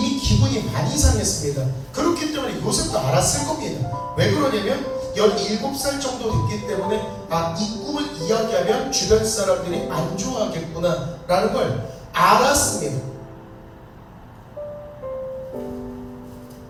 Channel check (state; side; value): identical; both; correlation 1.00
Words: 기분이 많이 상했습니다. 그렇기 때문에 요셉도 알았을 겁니다. 왜 그러냐면 17살 정도 됐기 때문에 이 꿈을 이야기하면 주변 사람들이 안 좋아하겠구나 라는 걸 알았습니다.